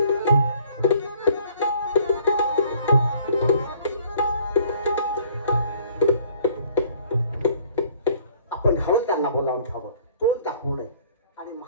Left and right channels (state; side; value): inverted; both; correlation -0.58